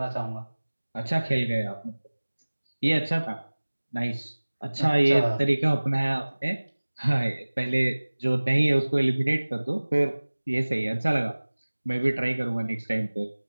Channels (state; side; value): inverted; both; correlation -1.00